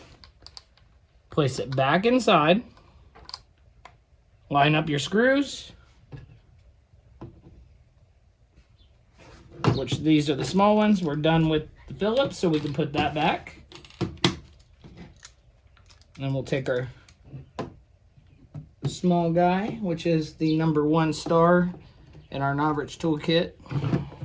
place it back inside, line up your screws, which these are the small ones. We're done with the Phillips, so we can put that back. And then we'll take our small guy, which is the #1 star in our Novrich toolkit.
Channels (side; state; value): both; identical; correlation 1.00